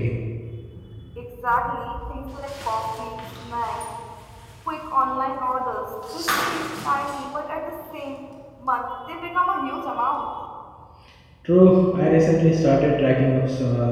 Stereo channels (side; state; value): both; identical; correlation 1.00